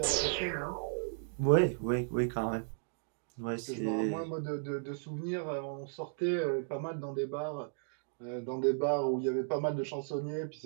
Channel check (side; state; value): left; silent; digital silence